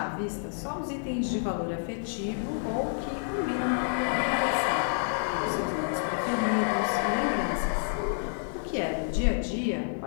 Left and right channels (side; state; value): right; silent; digital silence